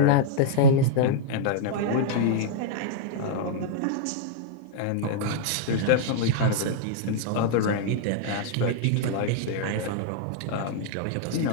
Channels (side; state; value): both; different; correlation -0.01